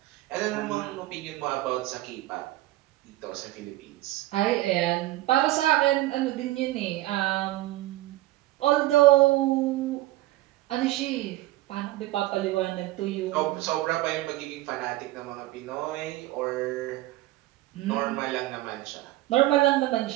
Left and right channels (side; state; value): left; quieter; 17.1 dB